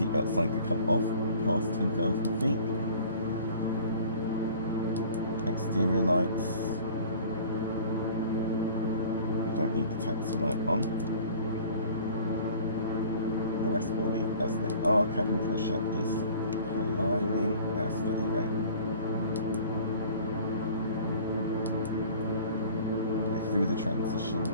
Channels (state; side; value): inverted; both; correlation -0.47